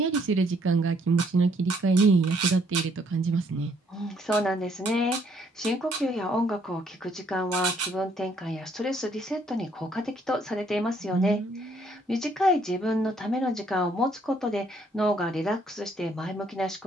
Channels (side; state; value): both; normal; correlation 0.67